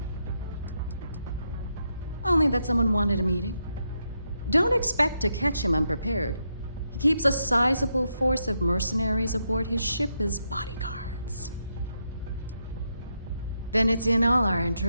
Only that someone wanted a meeting. Don't expect to catch him unprepared. He keeps a sizable force of mercenaries aboard his ship as bodyguards. Then it's in all our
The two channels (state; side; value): inverted; both; correlation -0.82